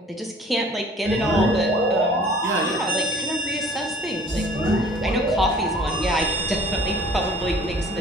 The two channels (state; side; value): normal; both; correlation 0.51